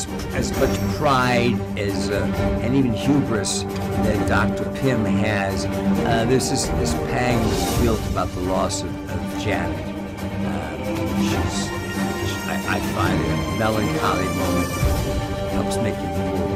much pride as and even hubris that Dr. Pym has, there's this pang that's built about the loss of Janet. I find it a melancholy moment that helps make it more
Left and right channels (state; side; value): identical; both; correlation 1.00